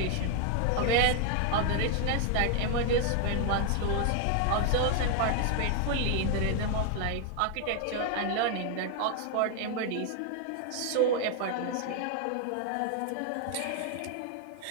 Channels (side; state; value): both; different; correlation 0.00